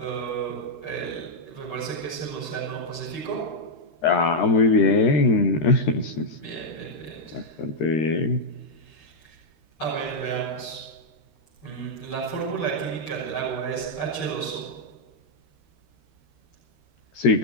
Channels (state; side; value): late; right; 13 ms